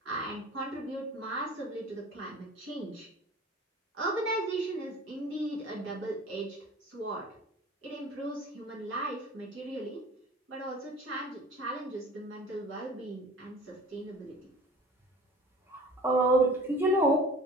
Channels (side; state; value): both; normal; correlation 0.42